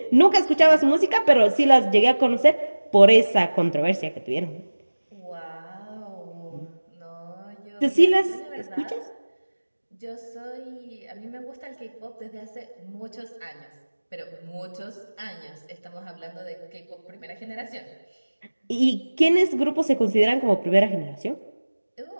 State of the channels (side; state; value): both; inverted; correlation -1.00